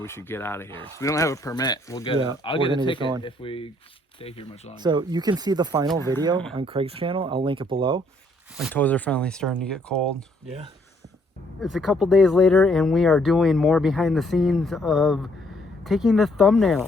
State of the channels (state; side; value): normal; both; correlation 0.67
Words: we should get out of here. We don't have a permit. We'll get Yeah, it. I'll we're get a gonna get ticket going. if we stay here much longer. So you can see the final video on Craig's channel. I'll link it below. My toes are finally starting to get cold. Yeah. It's a couple days later, and we are doing more behind the scenes of taking the